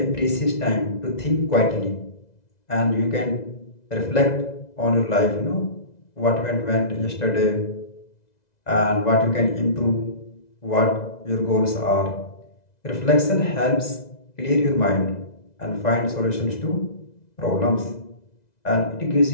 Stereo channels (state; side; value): late; right; 2.0 ms